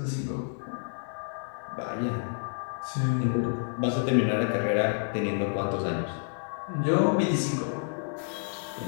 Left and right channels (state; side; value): silent; right; 58 dB below the other